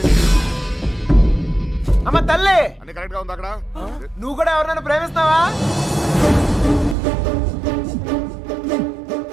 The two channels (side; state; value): left; drops out; at 7.0 s